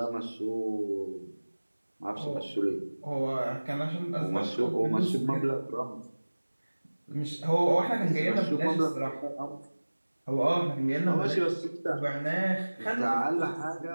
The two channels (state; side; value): inverted; both; correlation -1.00